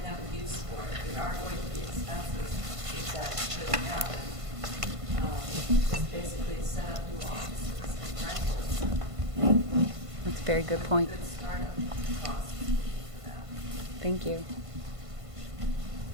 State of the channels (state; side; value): late; left; 1.5 ms